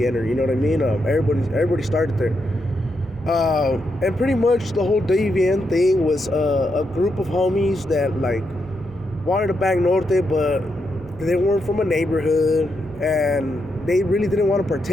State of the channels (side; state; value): right; noise; rumble, 20 dB below the sound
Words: you know what I mean? Everybody started there. And pretty much the whole WVN thing was a group of homies that, like, wanted to bang Norte, but they weren't from a neighborhood, and they really didn't want to